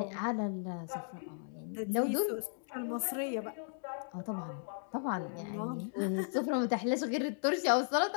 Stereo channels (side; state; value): right; silent; digital silence